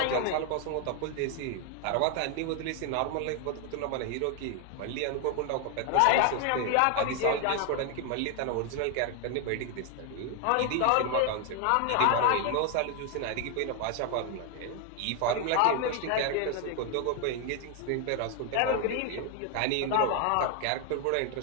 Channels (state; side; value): different; both; correlation 0.01